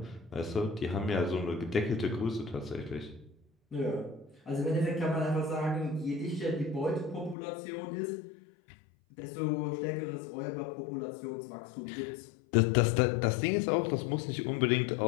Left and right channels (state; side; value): drops out; right; at 7.4 s